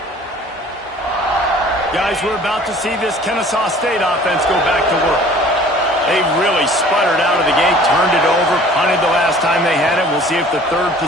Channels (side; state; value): both; normal; correlation 0.50